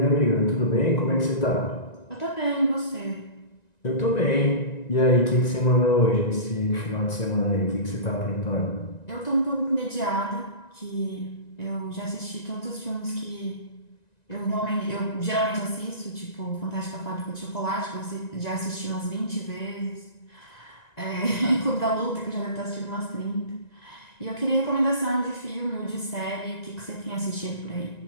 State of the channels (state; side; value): late; right; 1.9 ms